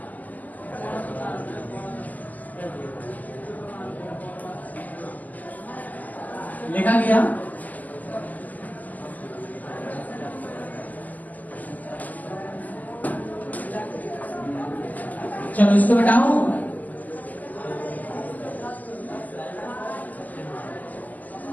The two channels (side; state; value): right; late; 0.080 ms